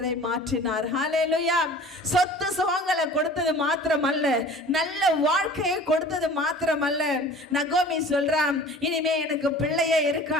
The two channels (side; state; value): both; normal; correlation 0.44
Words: மாற்றினார். ஹல்லேலூயா. சொத்து சுகங்களை கொடுத்தது மாத்திரமல்ல, நல்ல வாழ்க்கையை கொடுத்தது மாத்திரமல்ல. நகோமி சொல்றான், இனிமே எனக்கு பிள்ளையே